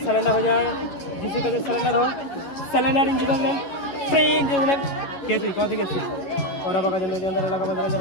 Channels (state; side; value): late; right; 11 ms